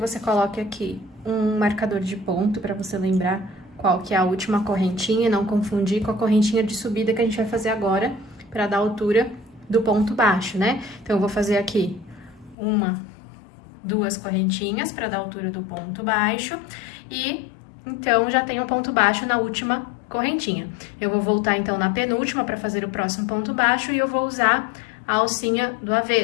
coloque aqui um marcador de ponto, pra você lembrar qual que é a última correntinha e não confundir com a correntinha de subida que a gente vai fazer agora, para dar a altura do ponto baixo, né? Então, eu vou fazer aqui 1, 2 correntinhas para dar a altura do ponto baixo e, então, já tenho um ponto baixo na última correntinha. Eu vou voltar, então, na penúltima para fazer o próximo ponto baixo e eu vou usar a alcinha do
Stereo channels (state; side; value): drops out; right; at 12.6 s